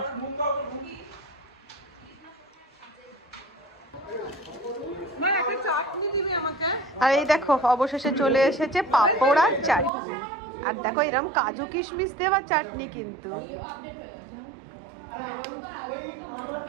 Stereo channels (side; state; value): left; drops out; at 9.9 s